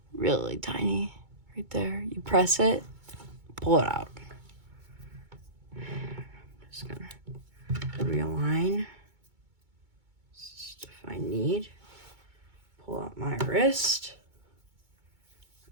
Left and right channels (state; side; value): late; left; 2.2 ms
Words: Really tiny. Right there. You press it, pull it out. Just gonna realign. Just if I need. Pull out my wrist.